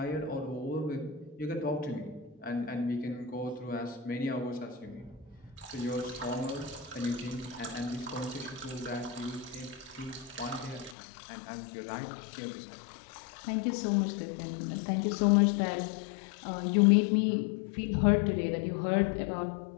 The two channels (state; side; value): drops out; right; at 11.0 s